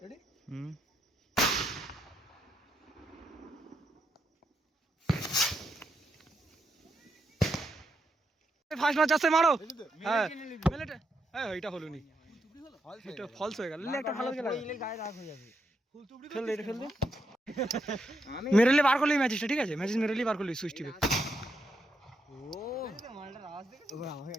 রেডি? ফার্স্ট ম্যাচ আছে, মারো। হ্যাঁ মেলেটে, হ্যাঁ এটা হলো নি, এটা ফলস হয়ে গেল। একটা ভালো গেল, গায়ে রাগ হয়ে যাবে। ফেল দে, ফেল দে, মেরেলে বার করলি ম্যাচটা, ঠিক আছে, ম্যাচ মেরেলি বার করলি সুইচ টিপে।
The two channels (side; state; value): both; normal; correlation 0.80